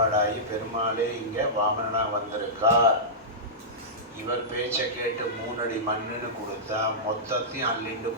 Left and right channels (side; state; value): both; normal; correlation -0.15